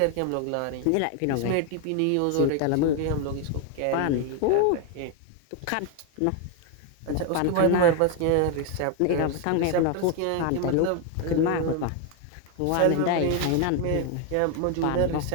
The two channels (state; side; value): different; both; correlation 0.01